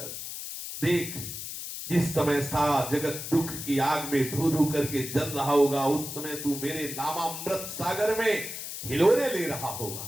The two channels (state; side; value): noise; left; hiss, 8 dB below the sound